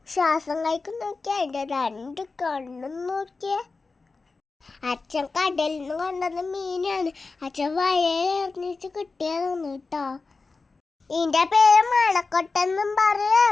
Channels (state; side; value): quieter; right; 4.0 dB